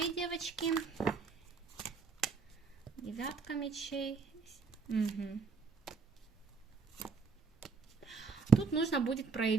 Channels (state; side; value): quieter; left; 5.1 dB